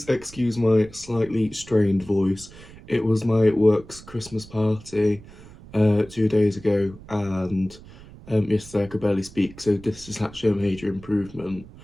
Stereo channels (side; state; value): right; noise; rumble, 19 dB below the sound